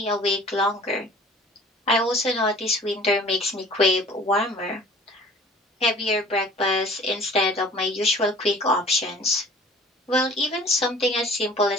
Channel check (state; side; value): normal; both; correlation 0.47